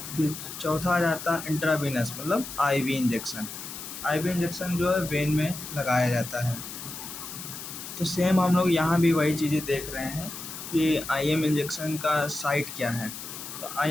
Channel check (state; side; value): noise; left; hiss, 10 dB below the sound